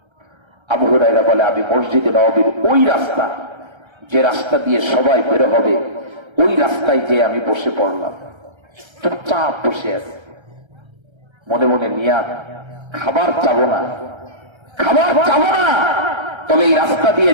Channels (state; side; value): late; left; 1.3 ms